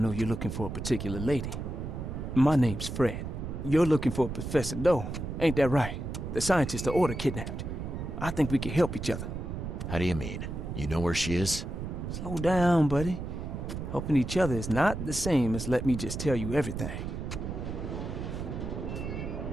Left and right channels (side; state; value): right; noise; rumble, 6 dB below the sound